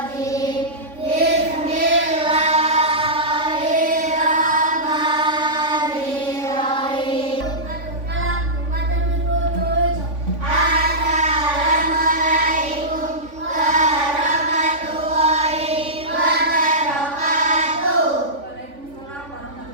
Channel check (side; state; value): left; late; 3.5 ms